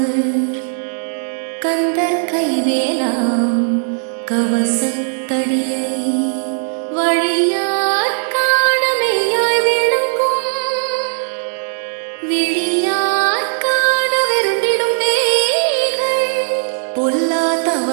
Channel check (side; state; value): left; silent; digital silence